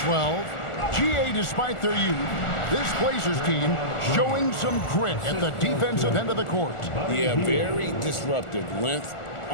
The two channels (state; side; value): late; right; 1.4 ms